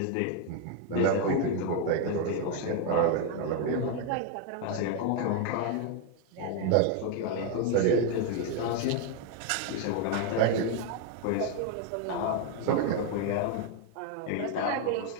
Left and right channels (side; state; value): both; different; correlation 0.01